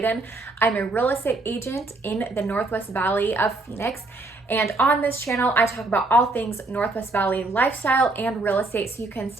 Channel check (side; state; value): left; quieter; 3.1 dB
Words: I'm a real estate agent in the Northwest Valley of Phoenix. And on this channel, I talk about all things Northwest Valley lifestyle and real estate so you can